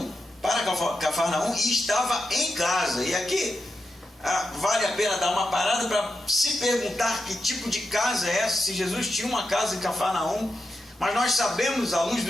para Cafarnaum e estava em casa. E aqui vale a pena dar uma parada para se perguntar que tipo de casa é essa, se Jesus tinha uma casa em Cafarnaum. Mas nós sabemos, à luz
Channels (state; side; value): normal; both; correlation 0.87